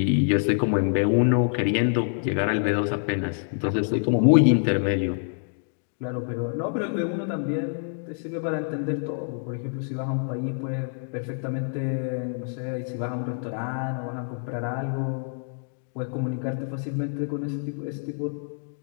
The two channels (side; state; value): right; silent; digital silence